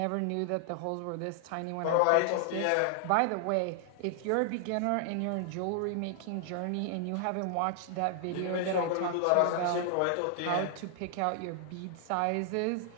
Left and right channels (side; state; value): both; different; correlation 0.00